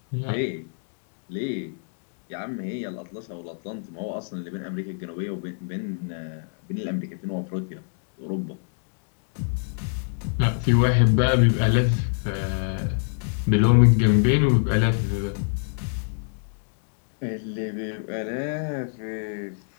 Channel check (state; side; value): silent; right; digital silence